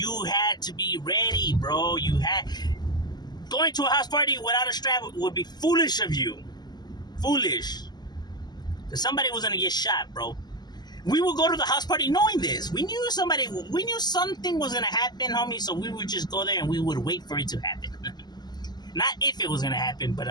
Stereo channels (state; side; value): late; right; 0.20 ms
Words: had to be ready, bro. Going to a house party without a strap would be foolish of you. Foolish. Because somebody was going to get shot, bro. We would go to the house party knowing this. We knew something was going to happen, homie. So we would just go there and we would wait for it to happen. Not if it was going to happen, but